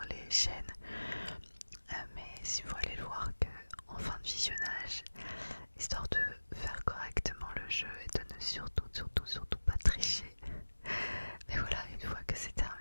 les chaînes, mais si vous allez le voir qu'en fin de visionnage, histoire de faire correctement le jeu et de ne surtout pas tricher. Mais voilà, une fois que c'est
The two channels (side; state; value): both; inverted; correlation -1.00